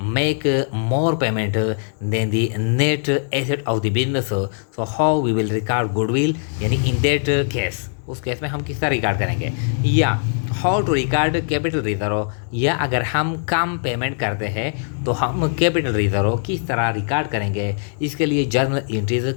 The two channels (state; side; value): silent; right; 65 dB below the other